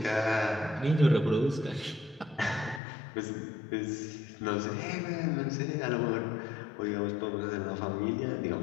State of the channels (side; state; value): right; drops out; at 2.8 s